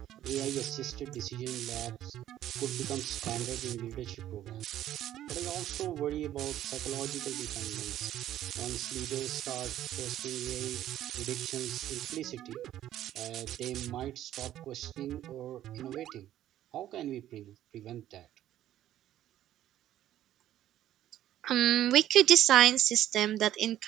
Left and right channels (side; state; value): left; quieter; 12.5 dB